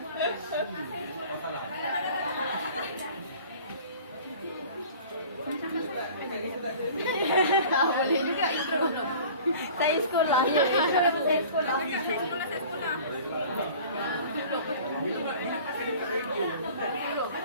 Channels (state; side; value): inverted; both; correlation -0.45